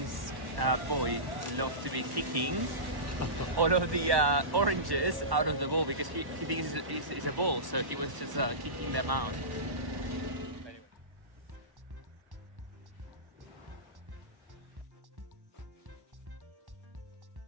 boy loves to be kicking all of the oranges out of the bowl because he thinks it's a ball, so he was just kicking them out.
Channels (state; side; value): late; left; 1.1 ms